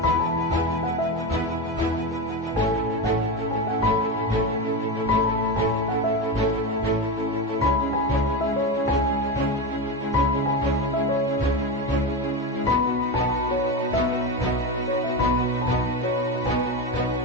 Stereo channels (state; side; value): normal; both; correlation 0.17